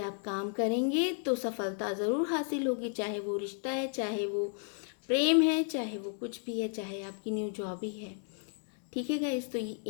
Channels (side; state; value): right; silent; 56 dB below the other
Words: काम करेंगे तो सफलता ज़रूर हासिल होगी, चाहे वो रिश्ता है, चाहे वो प्रेम है, चाहे वो कुछ भी है, चाहे आपकी न्यू जॉब ही है। ठीक है गाइस, तो ये